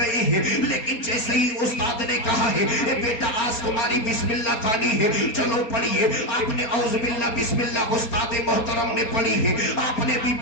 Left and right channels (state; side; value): late; right; 4.2 ms